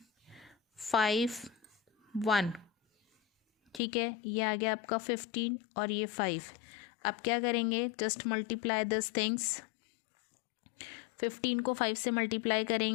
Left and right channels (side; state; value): right; drops out; at 3.8 s